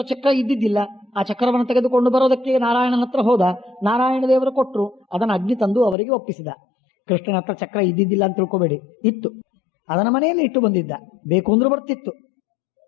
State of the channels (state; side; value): drops out; right; at 6.0 s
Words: ಚಕ್ರ ಇದ್ದಿದ್ದಿಲ್ಲ. ಆ ಚಕ್ರವನ್ನು ತೆಗೆದುಕೊಂಡು ಬರೋದಕ್ಕೆ ನಾರಾಯಣನ ಹತ್ರ ಹೋದ. ನಾರಾಯಣ ದೇವರು ಕೊಟ್ಟರು, ಅದನ್ನು ಅಗ್ನಿ ತಂದು ಅವರಿಗೆ ಒಪ್ಪಿಸಿದ. ಕೃಷ್ಣನ ಹತ್ರ ಚಕ್ರ ಇದ್ದಿದ್ದಿಲ್ಲ ಅಂತ ತಿಳ್ಕೊಬೇಡಿ, ಇತ್ತು. ಅದನ್ನ ಮನೆಯಲ್ಲಿ ಇಟ್ಟು ಬಂದಿದ್ದ. ಬೇಕು ಅಂದ್ರೆ ಬರ್ತಿತ್ತು,